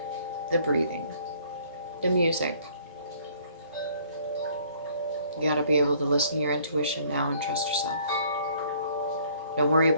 the breathing, the music. You got to be able to listen to your intuition now and trust yourself. Don't worry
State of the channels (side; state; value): both; inverted; correlation -0.60